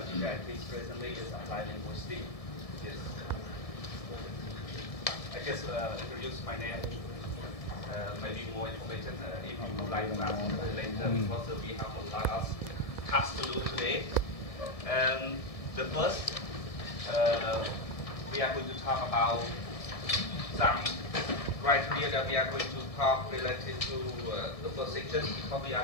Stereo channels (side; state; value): right; late; 1.7 ms